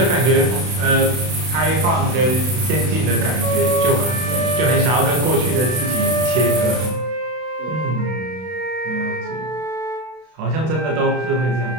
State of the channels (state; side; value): late; left; 32 ms